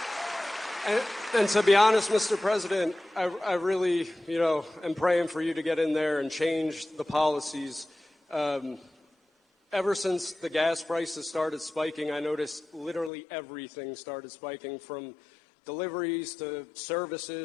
And to be honest, Mr. President, I really, am praying for you to get in there and change the policies. Ever since the gas prices started spiking, I noticed literally everything started spiking, from deliveries to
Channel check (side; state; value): right; drops out; at 13.1 s